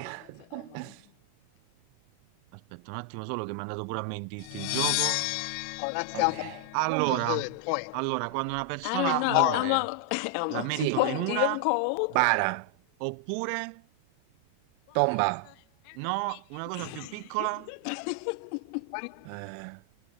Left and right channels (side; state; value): both; different; correlation 0.00